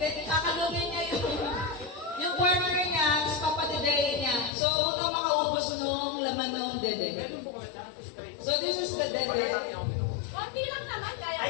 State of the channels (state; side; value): drops out; right; at 4.5 s